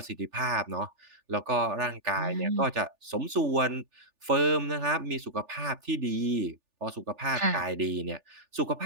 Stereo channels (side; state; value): left; late; 3.4 ms